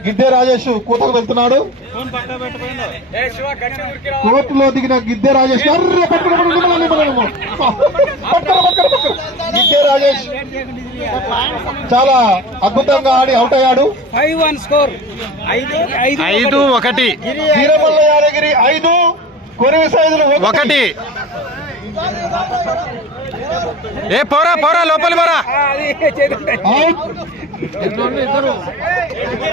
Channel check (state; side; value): normal; both; correlation 0.35